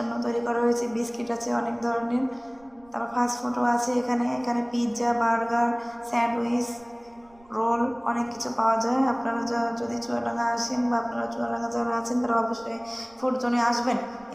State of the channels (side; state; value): right; noise; rumble, 29 dB below the sound